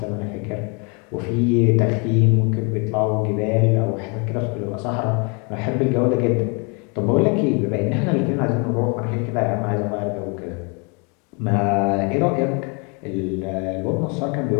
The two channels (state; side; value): quieter; right; 33.7 dB